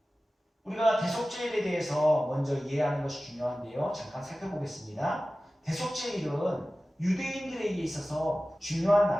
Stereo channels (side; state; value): both; normal; correlation 0.96